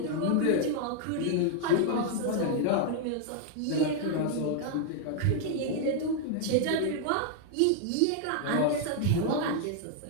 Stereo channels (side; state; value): both; different; correlation 0.00